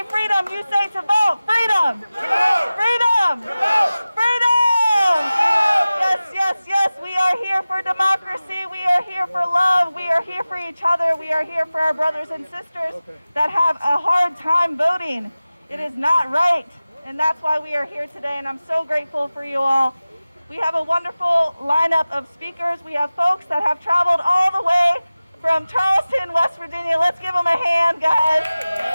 freedom, you say to vote. Freedom. Freedom. Freedom. Yes, yes, yes. We are here for democracy. We are here for love. We are here for each other. We are here for our brothers and sisters that have a hard time voting. It is not right. And that's why we are here today. And I'm so grateful for you all. We have a wonderful lineup of speakers. We have folks that have traveled all the way from Charleston, West Virginia. Let's give them a hand, guys.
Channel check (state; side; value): inverted; both; correlation -0.97